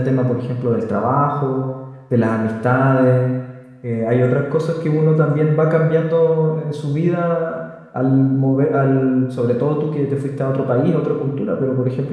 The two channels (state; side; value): identical; both; correlation 1.00